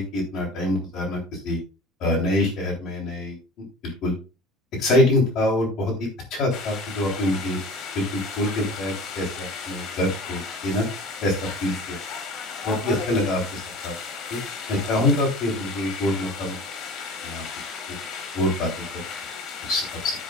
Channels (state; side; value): normal; both; correlation 0.40